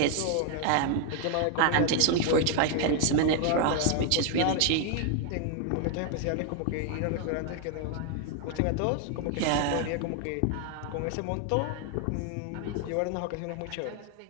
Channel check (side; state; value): both; different; correlation 0.00